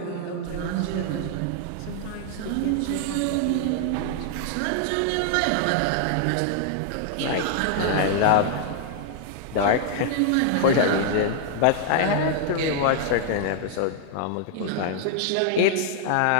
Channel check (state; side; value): different; both; correlation 0.00